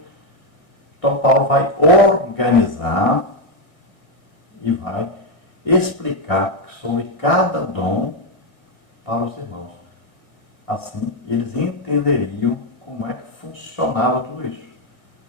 Então Paulo vai organizar e vai explicar sobre cada dom para os irmãos. Assim, eles entenderiam como é que funcionava tudo isso.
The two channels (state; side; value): late; right; 2.0 ms